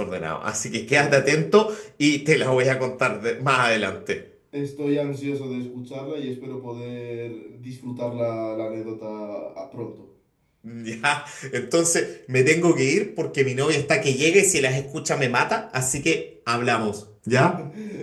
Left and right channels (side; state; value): both; identical; correlation 1.00